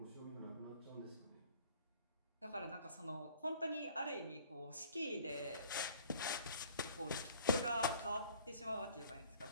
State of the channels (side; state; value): both; inverted; correlation -0.54